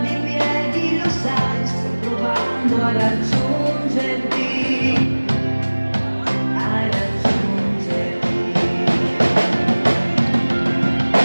piedi lo sai, sto provando a raggiungerti.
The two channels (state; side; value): inverted; both; correlation -1.00